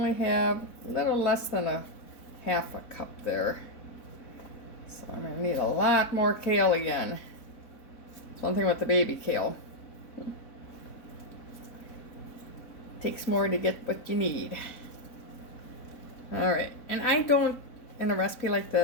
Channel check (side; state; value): right; late; 4.0 ms